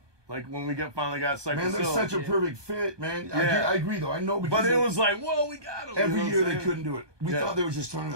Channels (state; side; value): late; left; 1.2 ms